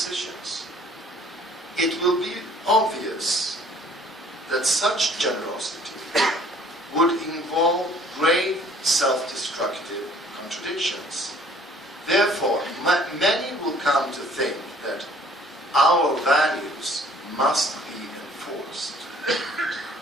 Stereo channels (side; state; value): both; normal; correlation 0.56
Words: It will be obvious that such generosity would involve grave self-destructive contradictions. Therefore, many will come to think that our values must be enforced.